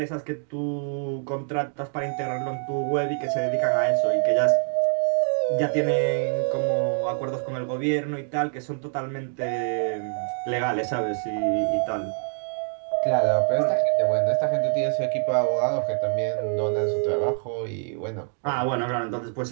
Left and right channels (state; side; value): silent; left; 56 dB below the other